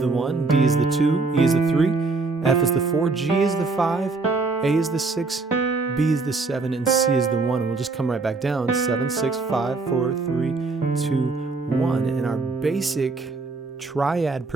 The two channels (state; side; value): quieter; left; 3.9 dB